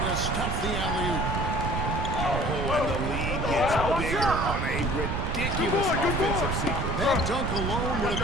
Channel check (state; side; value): noise; right; rumble, 1 dB below the sound